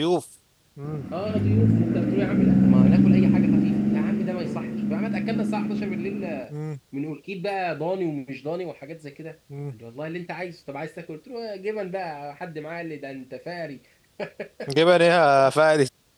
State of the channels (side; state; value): both; identical; correlation 1.00